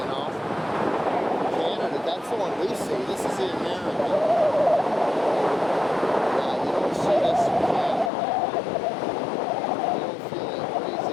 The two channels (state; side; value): drops out; right; at 8.1 s